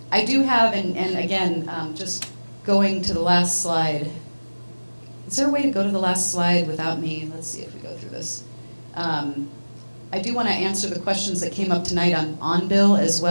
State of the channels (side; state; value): both; inverted; correlation -1.00